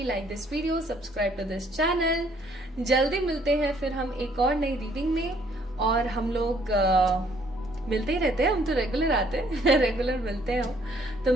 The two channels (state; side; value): normal; both; correlation 0.64